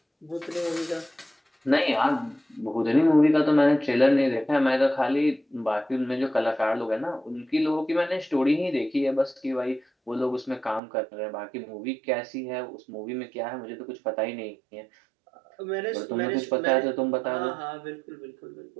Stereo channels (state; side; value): drops out; left; at 10.8 s